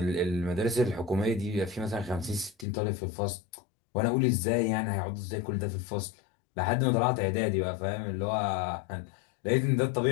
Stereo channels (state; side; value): drops out; right; at 2.7 s